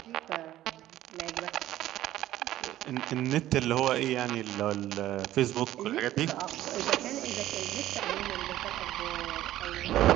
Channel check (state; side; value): quieter; left; 13.9 dB